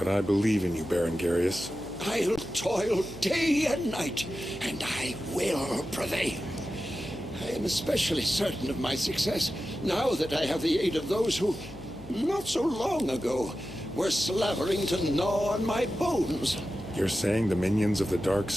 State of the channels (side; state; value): left; noise; hum, 18 dB below the sound